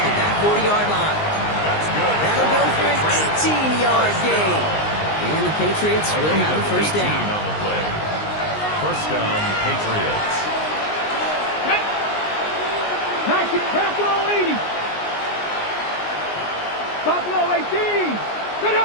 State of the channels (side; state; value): right; late; 19 ms